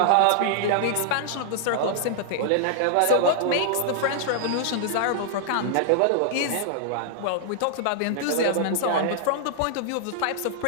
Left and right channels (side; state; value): both; different; correlation -0.01